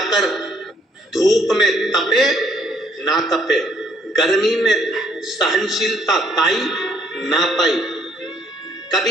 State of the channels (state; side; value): normal; both; correlation 0.66